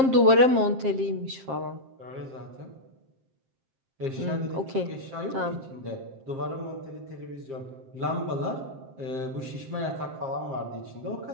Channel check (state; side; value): late; left; 7.5 ms